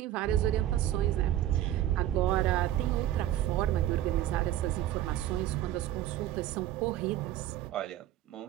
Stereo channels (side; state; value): left; quieter; 12.8 dB